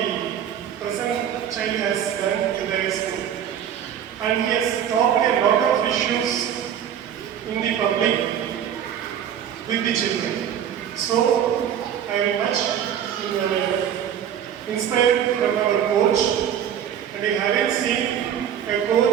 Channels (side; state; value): left; quieter; 9.4 dB